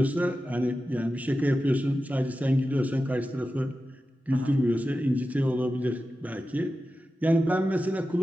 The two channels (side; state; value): both; normal; correlation 0.92